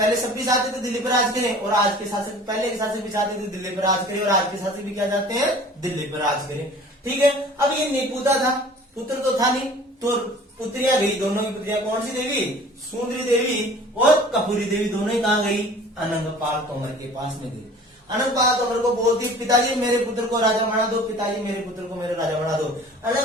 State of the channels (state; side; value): normal; both; correlation 0.46